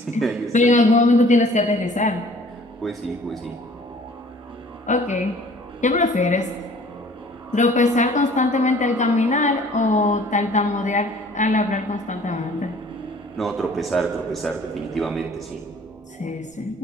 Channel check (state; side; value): normal; both; correlation 0.52